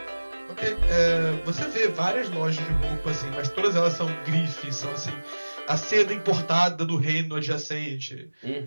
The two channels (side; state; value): both; inverted; correlation -1.00